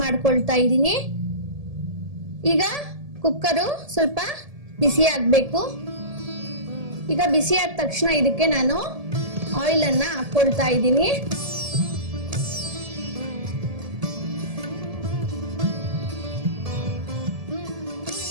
ಮಾಡ್ಕೊಳ್ತಾ ಇದ್ದೀನಿ. ಈಗ ಕುಕ್ಕರು ಸ್ವಲ್ಪ ಬಿಸಿ ಆಗ್ಬೇಕು. ಈಗ ಬಿಸಿ ಆದ ತಕ್ಷಣ ಇದಕ್ಕೆ ನಾನು ಆಯಿಲ್ ಅನ್ನ ಹಾಕೊಳ್ತಾ ಇದ್ದೀನಿ.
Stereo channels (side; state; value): left; late; 1.7 ms